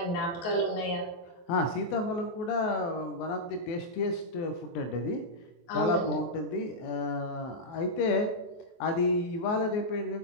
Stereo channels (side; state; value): right; late; 23 ms